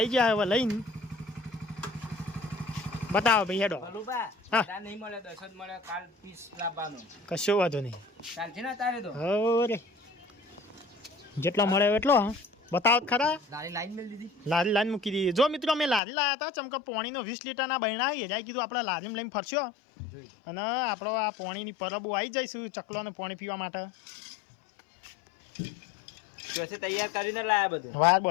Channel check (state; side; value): drops out; right; at 16.0 s